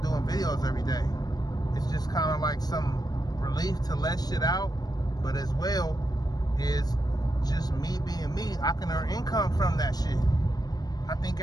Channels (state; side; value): late; right; 0.19 ms